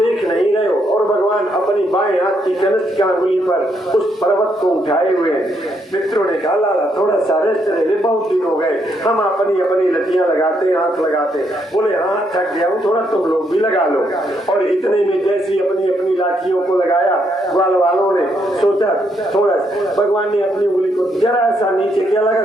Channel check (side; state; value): both; normal; correlation 0.75